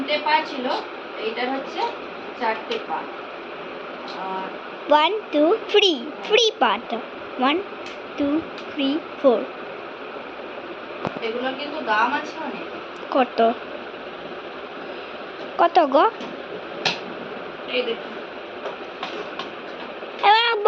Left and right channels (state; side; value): identical; both; correlation 1.00